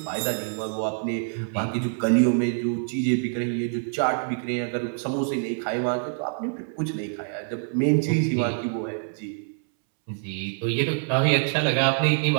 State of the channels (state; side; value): silent; left; 61 dB below the other